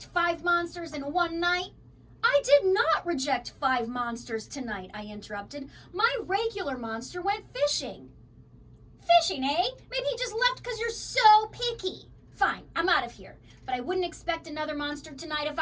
5 monsters in one night. I did not reject 5 monsters tonight, I interrupted. My regular monster went fishing. Fishing, eh? Maybe he just left because you're so picky. Fine, I'm out of here. But I wouldn't expect another monster tonight if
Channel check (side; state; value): both; identical; correlation 1.00